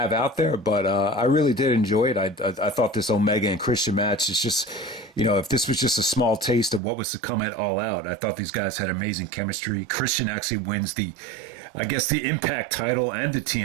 out there, but I really did enjoy it. I thought this Omega and Christian match is just, if this was just a small taste of what was to come at All Out, I thought these guys had amazing chemistry. Christian actually wins the Impact title and the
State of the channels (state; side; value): drops out; left; at 6.8 s